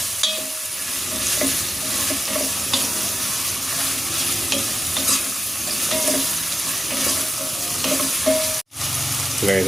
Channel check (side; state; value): both; normal; correlation 0.93